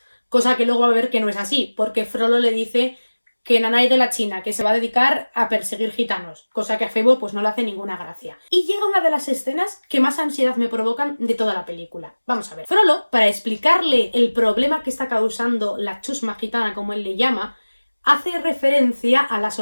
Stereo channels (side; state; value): both; inverted; correlation -1.00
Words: cosa que luego va a ver que no es así, porque Frollo le dice que Nanay de la China, que se va a dedicar a perseguir gitanos, cosa que a Febo pues no le hace ninguna gracia. Y llega una de las escenas que más ansiedad me provocan de toda la película. Vamos a ver. Frollo, para explicarle el problema que está causando la chusma gitana, como él le llama, hace referencia a las